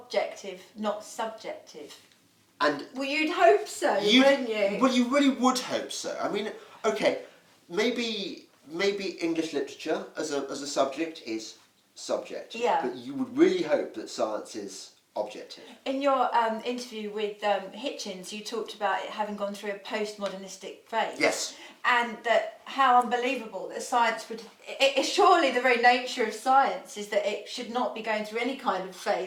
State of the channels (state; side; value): identical; both; correlation 1.00